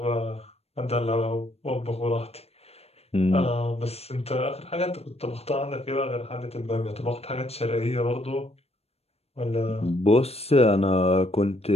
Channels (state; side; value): late; right; 0.30 ms